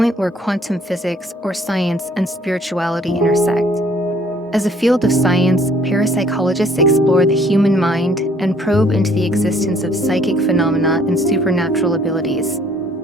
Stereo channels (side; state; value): both; normal; correlation 0.60